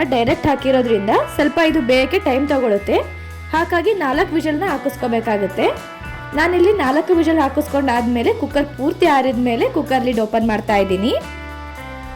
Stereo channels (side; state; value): both; identical; correlation 1.00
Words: ಡೈರೆಕ್ಟ್ ಹಾಕಿರೋದ್ರಿಂದ ಸ್ವಲ್ಪ ಇದು ಬೇಯಕ್ಕೆ ಟೈಮ್ ತಗೊಳುತ್ತೆ. ಹಾಗಾಗಿ 4 ವಿಷಲ್ನ ಹಾಕಿಸ್ಕೋಬೇಕಾಗುತ್ತೆ. ನಾನಿಲ್ಲಿ 4 ವಿಷಲ್ ಹಾಕಿಸ್ಕೊಂಡಾದ್ಮೇಲೆ ಕುಕ್ಕರ್ ಪೂರ್ತಿ ಆರಿದ ಮೇಲೆ ಕುಕ್ಕರ್ ಲಿಡ್ ಓಪನ್ ಮಾಡ್ತಾ ಇದ್ದೀನಿ.